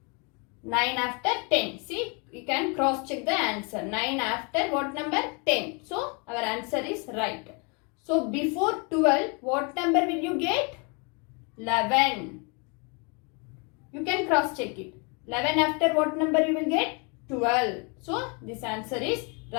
9 after 10. See, you can cross check the answer. 9 after what number? 10. So, our answer is right. So, before 12, what number will you get? 11. You can cross check it. 11 after what number you will get? 12. So, this answer is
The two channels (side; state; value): right; quieter; 33.2 dB